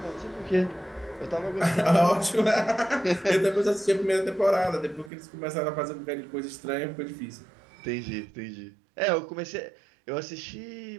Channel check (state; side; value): drops out; left; at 5.1 s